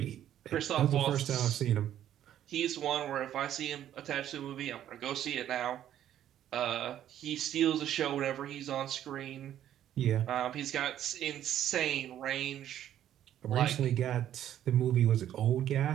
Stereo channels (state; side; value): quieter; left; 11.3 dB